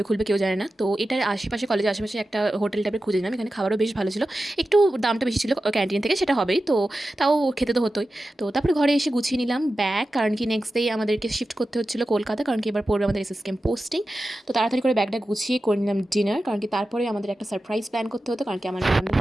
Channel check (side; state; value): both; normal; correlation 0.93